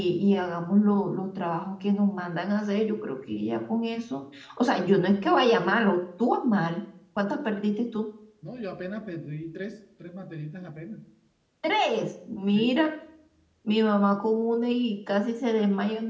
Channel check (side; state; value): both; identical; correlation 1.00